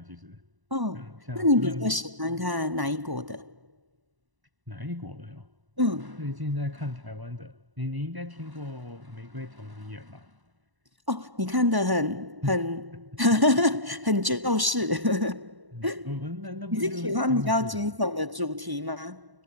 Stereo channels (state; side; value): late; left; 1.0 ms